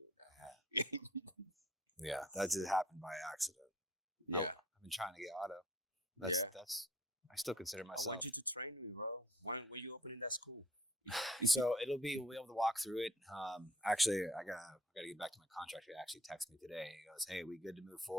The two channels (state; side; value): normal; both; correlation 0.55